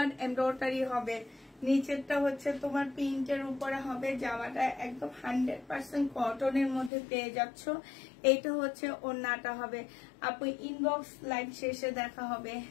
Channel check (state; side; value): drops out; right; at 6.9 s